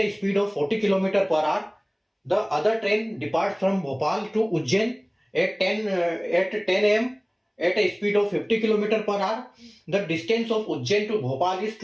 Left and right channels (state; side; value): identical; both; correlation 1.00